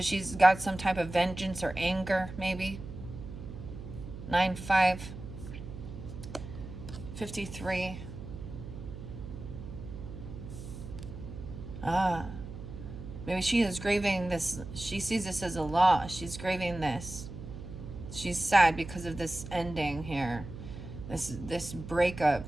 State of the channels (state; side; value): noise; right; hum, 11 dB below the sound